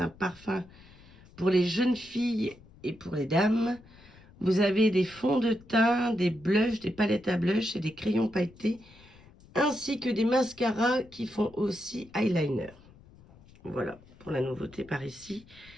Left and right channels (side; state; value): left; noise; rumble, 24 dB below the sound